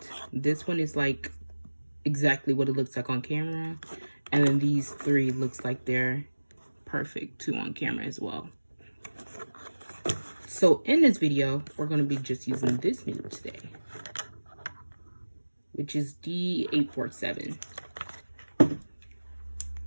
This one is like exactly what it looks like on camera. And then these three looks like they're perfect too on camera as well. So in this video, we're going to be just using this nude today, which is D847.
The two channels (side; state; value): both; inverted; correlation -1.00